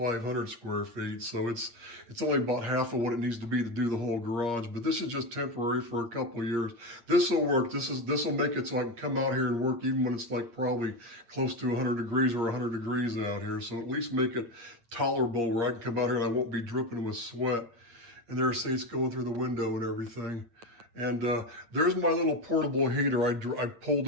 square feet, so it's only about half of what it needs to be to do the whole garage. But this is just temporary for a couple of years. This will work. This will make it so I can come out here and work even when it's like probably close to 100 degrees or 100 degrees out here. So at least make it tolerable where I can come out here and I won't be dripping with sweat. And there, see, it's going through the window and everything. And there's my little portable heater. I pulled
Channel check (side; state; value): left; late; 8.5 ms